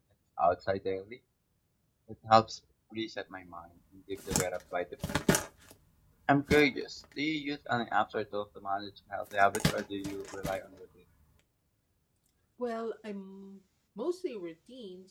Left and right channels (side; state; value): both; identical; correlation 1.00